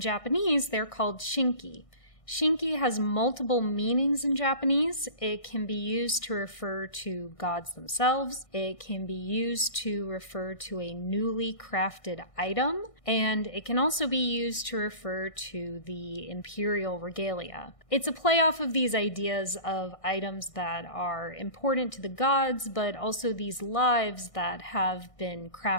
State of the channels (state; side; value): late; right; 1.6 ms